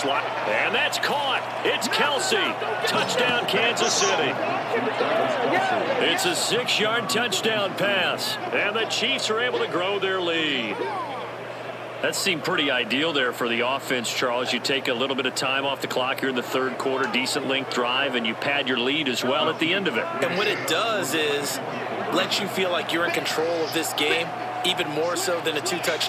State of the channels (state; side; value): identical; both; correlation 1.00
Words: that's caught. It's Kelsey. Touchdown, Kansas City. It's a 6-yard touchdown pass. And the Chiefs are able to grow their lead. That seemed pretty ideal there for the offense, Charles. You take a little bit of time off the clock here in the third quarter, decent length drive, and you pad your lead as well at the end of it. And what it does is lets you feel like you're in control of this game, even more so than a